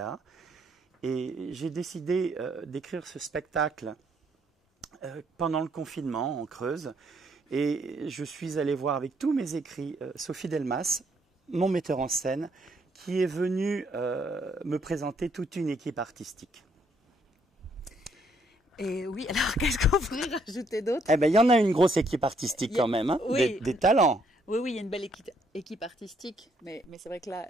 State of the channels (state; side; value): normal; both; correlation 0.70